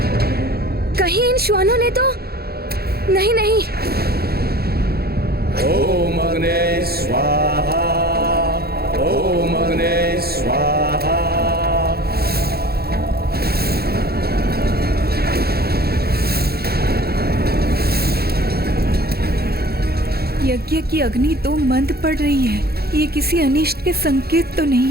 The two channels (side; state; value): left; late; 0.46 ms